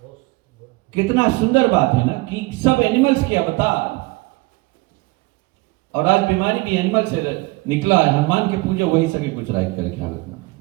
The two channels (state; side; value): quieter; left; 22.9 dB